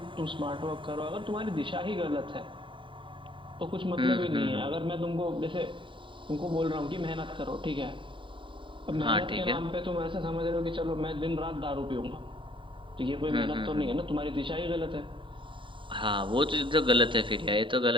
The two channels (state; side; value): late; left; 0.24 ms